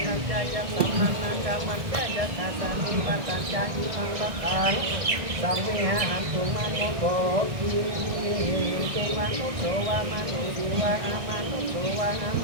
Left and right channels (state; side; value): late; left; 1.6 ms